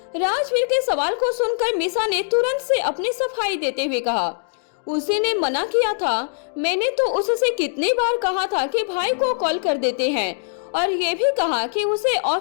राजवीर के सवाल को सुनकर मीसा ने तुरंत से अपनी सफाई देते हुए कहा, उसी ने मना किया था। मैंने तो उससे कितनी बार कहा था कि भाई को कॉल कर देते हैं और ये भी कहा कि उसे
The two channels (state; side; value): silent; right; digital silence